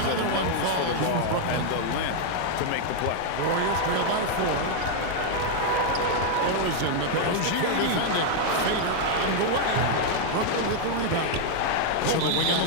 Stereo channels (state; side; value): different; both; correlation 0.00